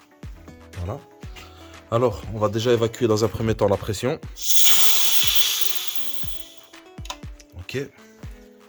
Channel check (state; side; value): identical; both; correlation 1.00